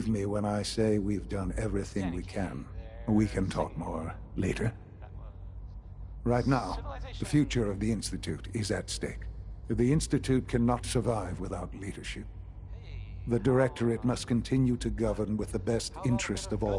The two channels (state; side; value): identical; both; correlation 1.00